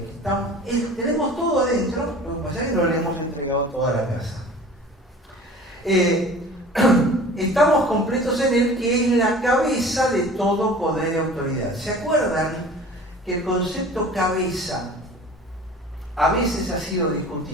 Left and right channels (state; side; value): normal; both; correlation 0.43